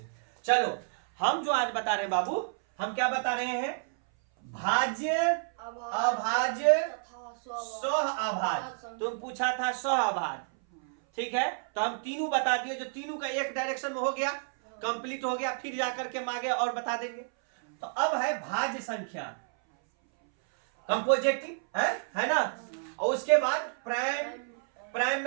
चलो हम जो आज बता रहे हैं बाबू, हम क्या बता रहे हैं? भाज्य, अभाज्य, सह अभाज्य। तुम पूछा था सह अभाज्य, ठीक है। तो हम तीनों बता दिए, जो तीनों का एक डायरेक्शन में हो गया, कंप्लीट हो गया। फिर जाकर के हम आगे और बता देंगे। तो अब है भाज्य संख्या, कंपोजिटिव है ना। और उसके बाद प्राइम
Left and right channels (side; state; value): left; silent; 58 dB below the other